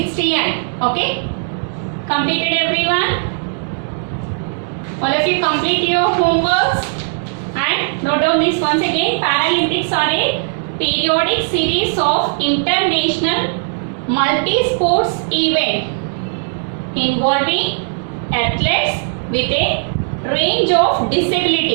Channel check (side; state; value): left; silent; digital silence